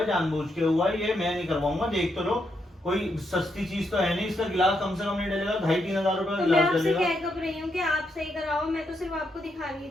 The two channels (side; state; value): both; normal; correlation 0.80